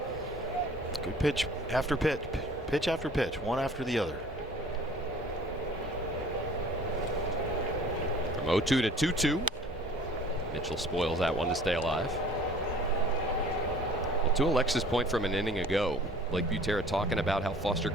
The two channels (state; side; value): normal; both; correlation 0.49